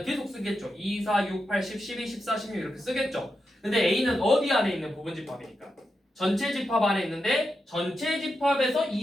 계속 쓰겠죠. 2, 4, 6, 8, 10, 12, 14, 16 이렇게 쓰겠죠. 근데 a는 어디 안에 있는 부분 집합이니까? 전체 집합 안에 있는데 전체 집합에서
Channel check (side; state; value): both; normal; correlation 0.87